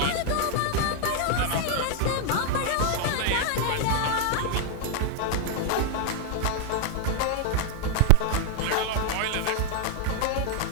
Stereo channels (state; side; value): different; both; correlation 0.01